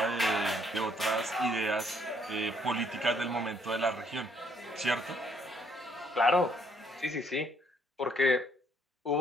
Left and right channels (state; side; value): normal; both; correlation 0.68